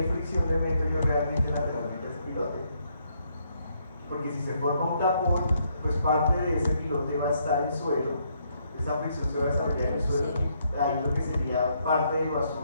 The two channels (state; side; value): inverted; both; correlation -0.73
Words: fricción le meto yo realmente lateralmente a ese pilote? Porque si se forma un tapón, pues parte de ese pilote va a estar en suelo, esa fricción se va a desarrollar en el suelo, ahí lo que sería parte de lo